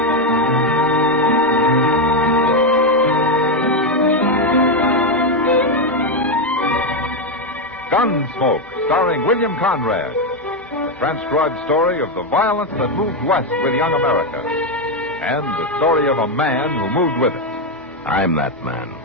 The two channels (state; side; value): normal; both; correlation 0.05